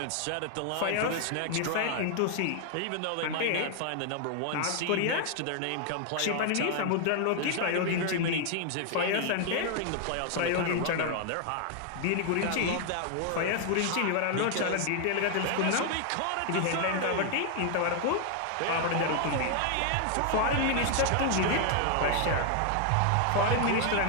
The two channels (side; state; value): both; different; correlation 0.00